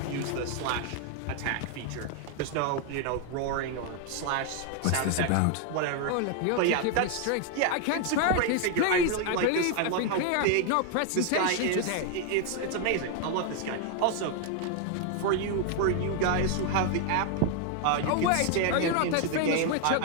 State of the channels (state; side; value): different; both; correlation 0.00